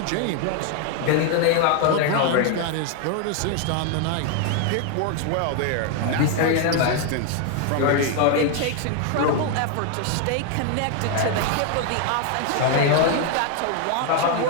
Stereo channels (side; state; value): both; different; correlation 0.00